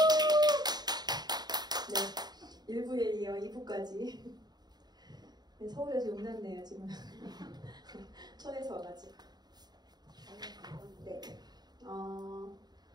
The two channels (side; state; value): left; late; 0.20 ms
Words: 네, 1부에 이어 2부까지. 네, 서울에서 용났네요, 지금. 천에서 와가지고. 네.